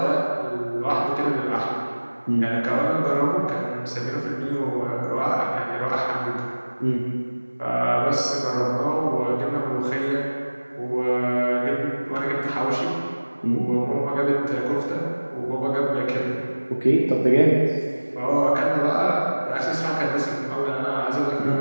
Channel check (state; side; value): inverted; both; correlation -1.00